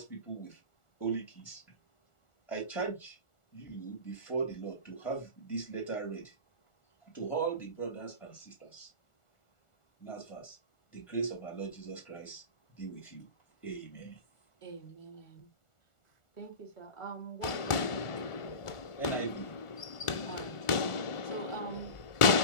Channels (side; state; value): right; late; 1.4 ms